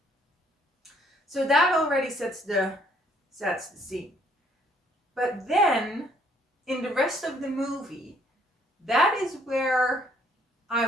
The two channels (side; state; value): both; normal; correlation 0.65